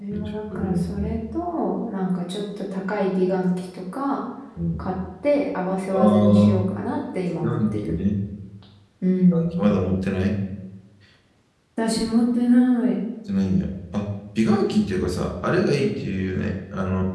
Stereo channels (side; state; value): both; identical; correlation 1.00